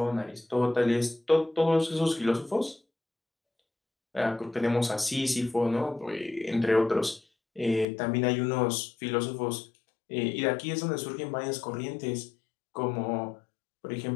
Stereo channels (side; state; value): right; drops out; at 7.9 s